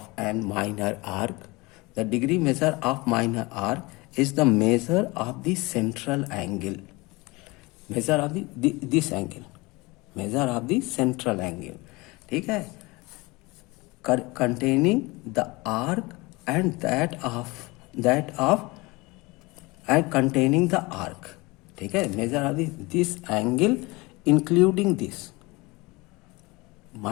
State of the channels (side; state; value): right; quieter; 23.8 dB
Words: an minor arc, the degree measure of minor arc is the measure of the central angle. Measure of this angle, measure of the central angle. ठीक है. containing the arc and containing the arc. ठीक है. Major of this angle including this.